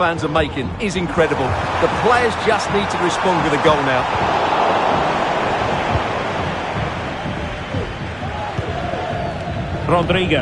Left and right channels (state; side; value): identical; both; correlation 1.00